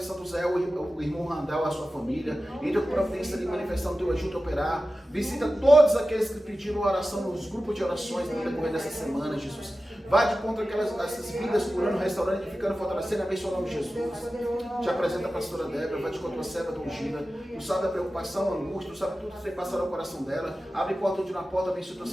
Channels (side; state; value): both; normal; correlation 0.94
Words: Santo Zé, o irmão Randall, a sua família. Entra com providência de manifestar o Teu agito operário. Visita todos aqueles que pediram oração nos grupos de orações no decorrer dessa semana, Jesus. Vá de contra essas vidas, curando, restaurando, edificando, fortalecendo, abençoando o nome de Jesus. Te apresenta a pastora Débora, vai de contra a serva do ungida. Tu sabe a preocupação, a angústia, tu sabe tudo que tem passado no coração dela. Abre porta onde na porta, abençoa o teu